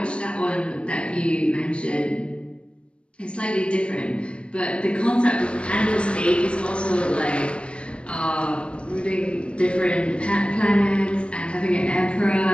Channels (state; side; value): late; right; 0.058 ms